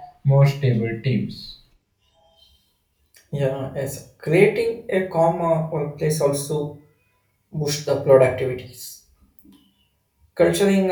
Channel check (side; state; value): both; identical; correlation 1.00